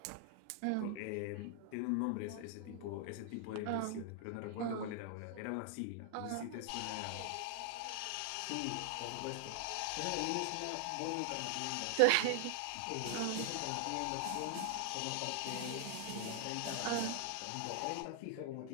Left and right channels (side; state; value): both; different; correlation 0.00